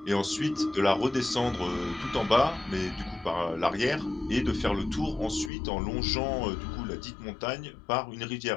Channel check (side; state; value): right; drops out; at 5.5 s